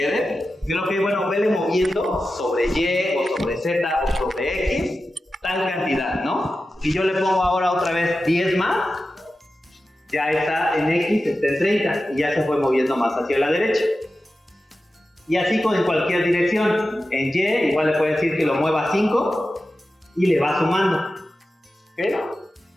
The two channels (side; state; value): both; normal; correlation 0.93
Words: creo que, bueno, vele moviendo sobre Y o sobre Z o sobre X tal cantidad, ¿no? Si yo le pongo ahora otra vez 10 más, ya está en X, está en 30 y ya se fue moviendo más hacia la derecha. Y así en cualquier dirección. En Y igual le puede decir que lo mueva 5 y le va sumando. ¿Okay?